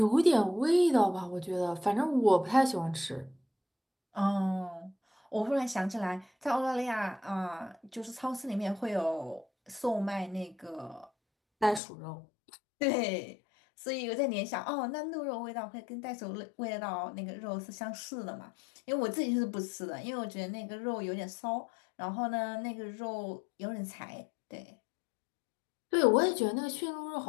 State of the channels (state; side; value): drops out; right; at 11.8 s